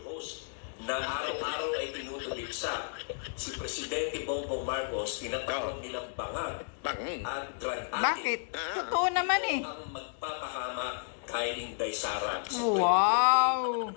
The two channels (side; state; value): right; silent; digital silence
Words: host na araw-araw ay tinutuligsa si Presidente Bongbong Marcos, tinatawag nilang bangag at drug addict. Bakit? Totoo naman eh. Ang magpapahama kay Inday Sara. Wow!